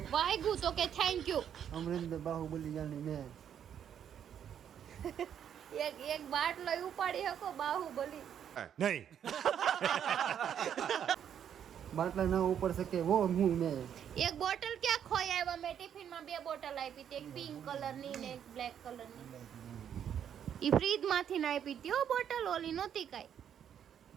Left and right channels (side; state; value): left; quieter; 9.0 dB